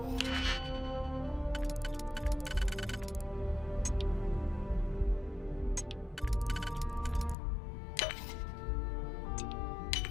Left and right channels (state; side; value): drops out; right; at 7.4 s